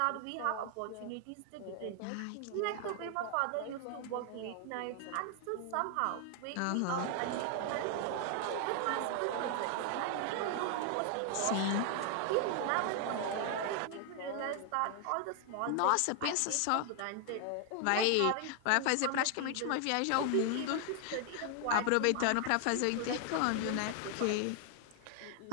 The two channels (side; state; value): both; different; correlation 0.00